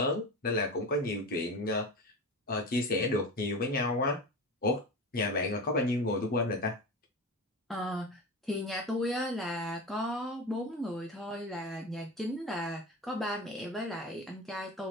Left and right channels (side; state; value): both; normal; correlation 0.27